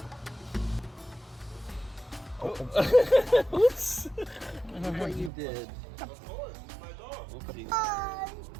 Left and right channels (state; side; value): drops out; left; at 5.3 s